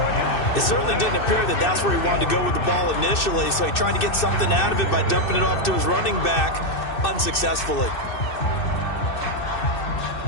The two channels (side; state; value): right; late; 2.6 ms